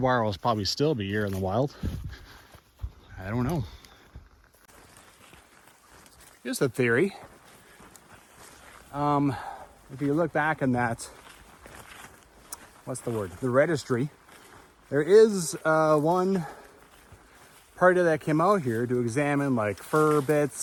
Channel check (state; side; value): identical; both; correlation 1.00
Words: wire will probably still be here in the wild. I don't know. Here's the theory. If you look back in that, what's the word? The registry. There is one party that came out here to examine like fur